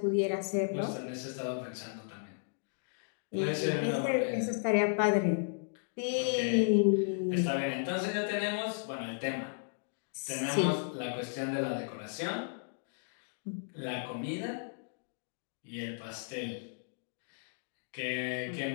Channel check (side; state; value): right; silent; digital silence